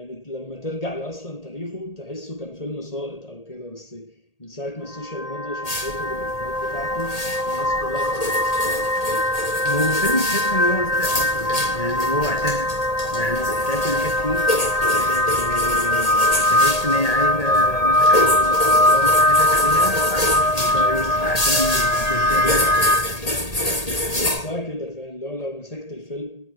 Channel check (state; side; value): late; right; 1.8 ms